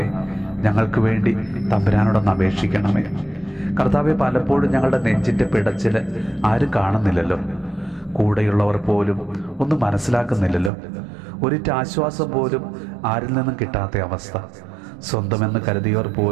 ഞങ്ങൾക്ക് വേണ്ടി തമ്പുരാനോടൊന്ന് അപേക്ഷിക്കണമേ. കർത്താവെ, പലപ്പോഴും ഞങ്ങളുടെ നെഞ്ചിൻ്റെ പിടച്ചിൽ ആരും കാണുന്നില്ലല്ലോ. കൂടെയുള്ളവർ പോലും ഒന്നും മനസ്സിലാക്കുന്നില്ലല്ലോ. ഒരിറ്റ് ആശ്വാസം പോലും ആരിൽ നിന്നും കിട്ടാത്ത അവസ്ഥ. സ്വന്തമെന്ന് കരുതിയവർ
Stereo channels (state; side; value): drops out; left; at 10.7 s